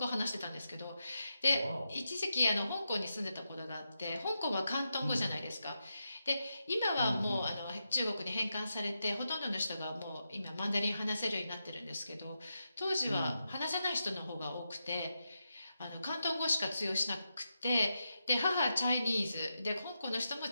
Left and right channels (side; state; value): both; inverted; correlation -0.87